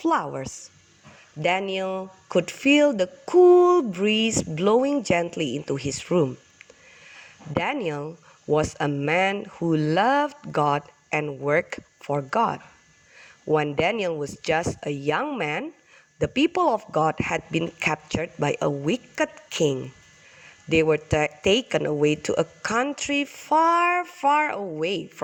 Daniel could feel the cool breeze blowing gently into his room. Daniel was a man who loved God and worked for God. When Daniel was just a young man, the people of God had been captured by a wicked king. They were taken away to a country far, far away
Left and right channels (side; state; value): both; identical; correlation 1.00